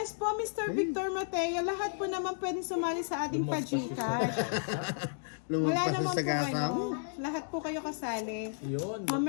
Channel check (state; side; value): silent; right; digital silence